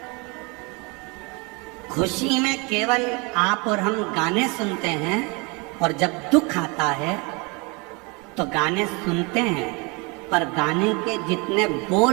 खुशी में केवल आप और हम गाने सुनते हैं, और जब दुख आता है तो गाने सुनते हैं, पर गाने के जितने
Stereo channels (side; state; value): left; quieter; 29.2 dB